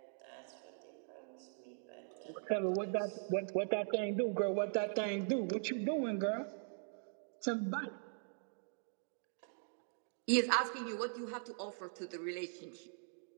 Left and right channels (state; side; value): silent; left; digital silence